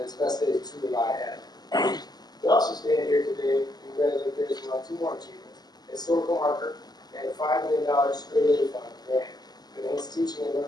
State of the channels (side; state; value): right; late; 0.20 ms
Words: its best days truly lie ahead. We also stand here today to congratulate Garrettsville on two more achievements: a historical marker and a $5 million straight A fund grant to enhance teaching and